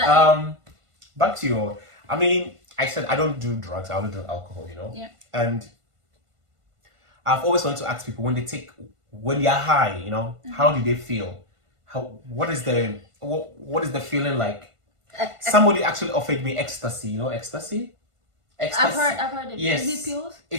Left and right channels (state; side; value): late; left; 1.5 ms